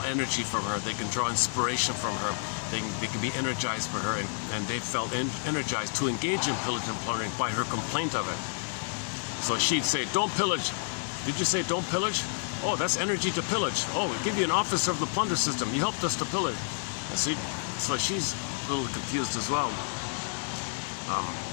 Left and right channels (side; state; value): right; silent; 58 dB below the other